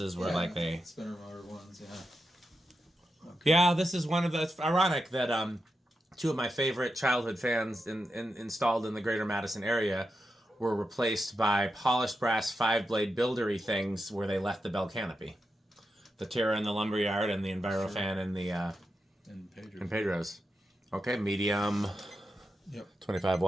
where like they... Spinner motor ones, yeah. Okay. Yeah, this is one of the... It's ironic that two of my favorite childhood fans installed in the greater Madison area were replaced by polished brass 5-blade buildery things where they left the bell canopy. The Terra in the lumberyard and the Envirofan in the in Pedro's. Okay, medium. Yep. 25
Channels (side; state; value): both; normal; correlation 0.88